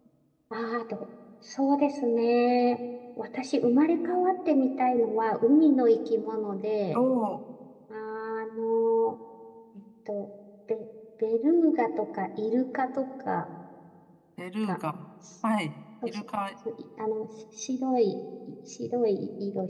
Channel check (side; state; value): both; identical; correlation 1.00